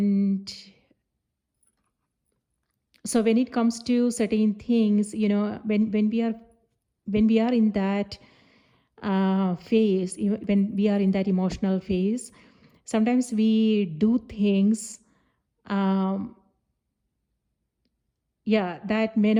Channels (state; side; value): identical; both; correlation 1.00